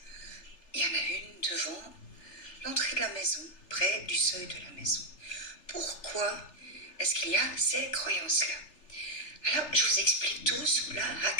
Il y en a une devant l'entrée de la maison, près du seuil de la maison. pourquoi est-ce qu'il y a ces croyances-là? Alors, je vous explique tout sous la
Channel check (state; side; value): late; right; 3.3 ms